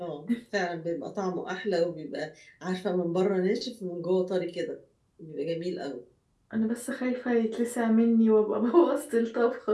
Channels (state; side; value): identical; both; correlation 1.00